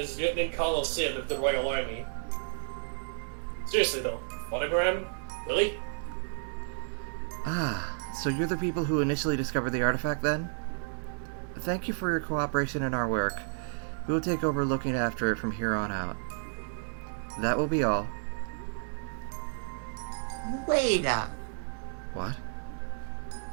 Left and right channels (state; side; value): silent; left; digital silence